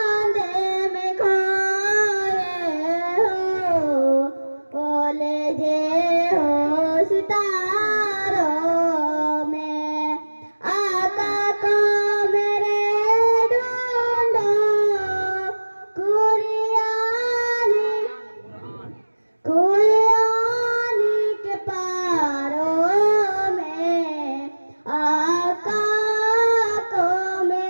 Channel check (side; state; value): both; inverted; correlation -1.00